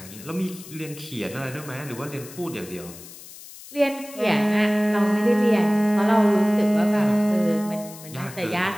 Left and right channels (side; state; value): left; noise; hiss, 17 dB below the sound